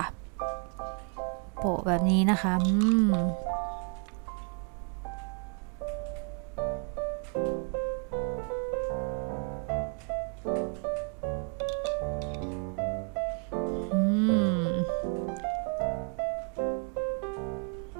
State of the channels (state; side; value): quieter; left; 39.2 dB